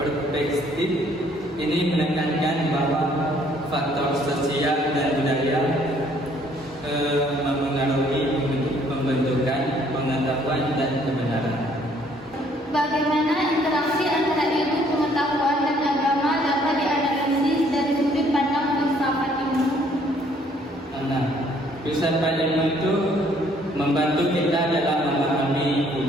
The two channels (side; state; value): both; normal; correlation 0.63